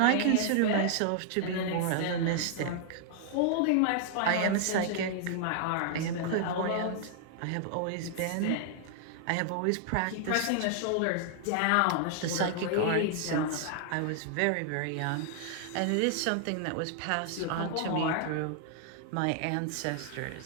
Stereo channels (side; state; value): both; different; correlation 0.00